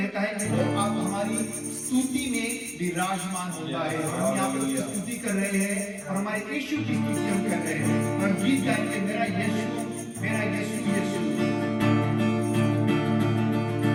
है कि वो आप हमारी स्तुति में विराजमान होता है। हम यहाँ पर उसकी स्तुति कर रहे हैं और हमारे यीशु की स्तुति हम कर रहे हैं और गीत गाएंगे, मेरा यीशु, मेरा यीशु, यीशु।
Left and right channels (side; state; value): both; identical; correlation 1.00